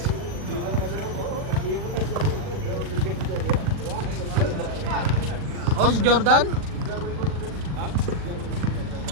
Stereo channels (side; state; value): left; late; 40 ms